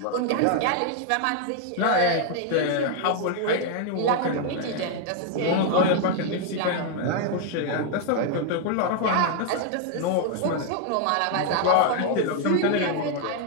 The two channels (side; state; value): both; different; correlation 0.00